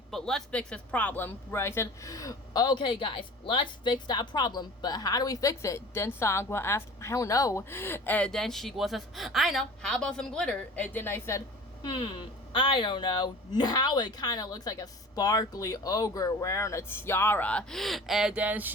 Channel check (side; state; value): both; normal; correlation 0.41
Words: let's fix this problem." Right, I said, "Okay, guys, let's fix that problem. But how do we fix it?" Then Songwa asked, "I don't know." And then Shigwa says, "I know. How about some glitter?" And then I said, I don't know. Now it kind of looks like a sparkly ogre wearing a tiara." And then